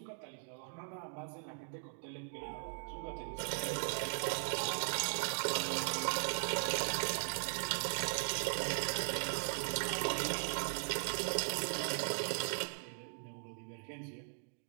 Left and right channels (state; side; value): silent; left; digital silence